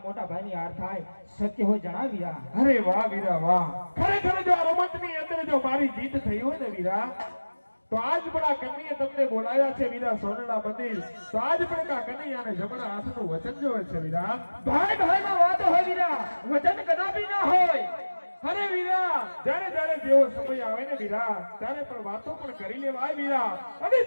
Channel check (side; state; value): both; inverted; correlation -1.00